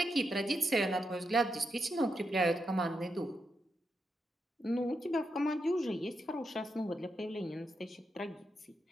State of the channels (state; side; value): normal; both; correlation 0.84